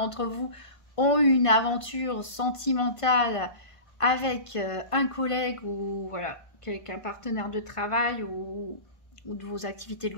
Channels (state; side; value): late; right; 1.5 ms